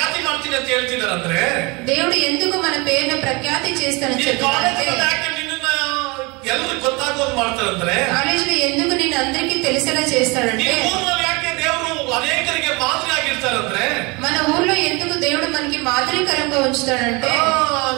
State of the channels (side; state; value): left; quieter; 27.1 dB